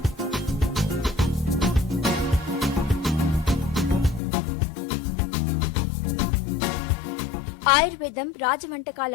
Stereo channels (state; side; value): drops out; right; at 4.2 s